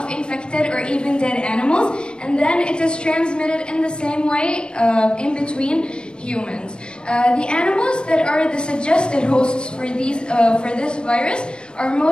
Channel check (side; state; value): right; late; 0.051 ms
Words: infected or even dead animals, and then it is transmitted in the same way in between humans. The animals that are the suggested hosts for this virus are